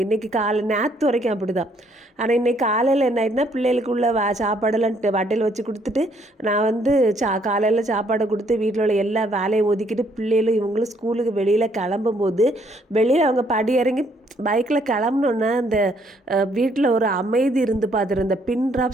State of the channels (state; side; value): normal; both; correlation 0.67